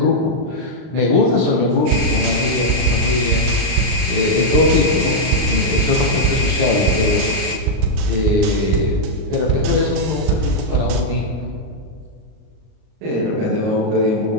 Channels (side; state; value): left; late; 39 ms